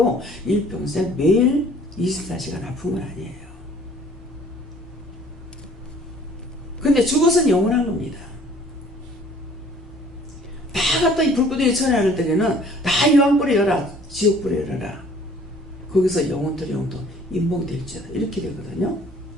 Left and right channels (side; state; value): both; normal; correlation 0.54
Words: 일평생 매일 24시간 아픈 건 아니에요. 근데 죽어서는 영원한 겁니다. 갖다 이 불구덩이에 처리할 때에는 다 유황불에 열어, 지옥불에 열어라. 거기서 영혼들 영도 인봉될지어다. 이렇게 되거든요.